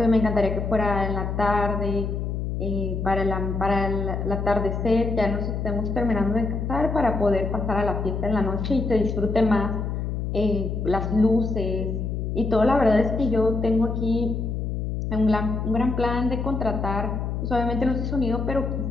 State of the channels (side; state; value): left; noise; hum, 2 dB below the sound